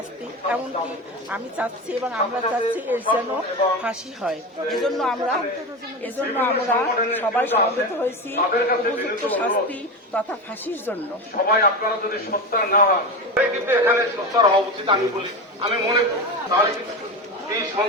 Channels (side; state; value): both; normal; correlation 0.21